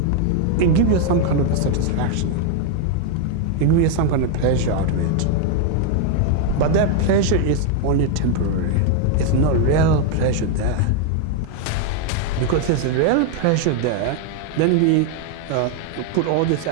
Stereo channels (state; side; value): different; both; correlation 0.01